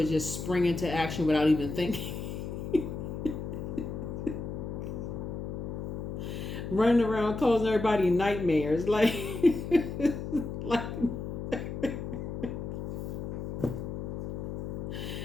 just spring into action without even thinking. Running around causing everybody nightmares. Like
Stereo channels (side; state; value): left; noise; hum, 5 dB below the sound